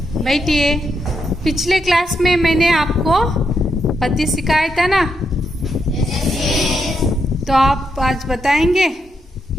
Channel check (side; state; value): both; normal; correlation 0.82